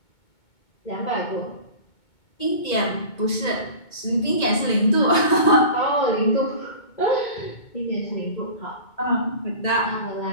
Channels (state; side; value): late; right; 2.2 ms